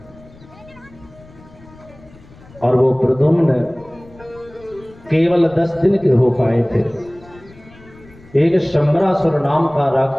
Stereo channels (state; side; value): noise; left; rumble, 24 dB below the sound